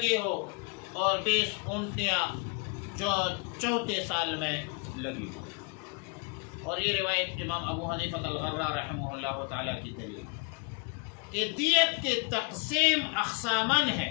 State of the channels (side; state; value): right; quieter; 32.8 dB